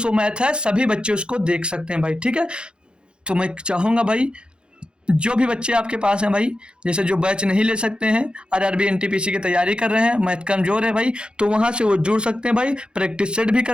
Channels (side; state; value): left; late; 0.052 ms